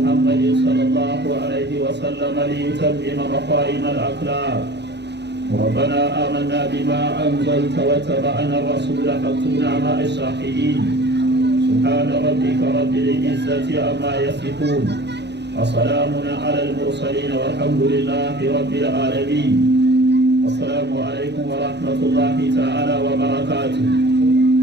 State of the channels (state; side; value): late; left; 0.50 ms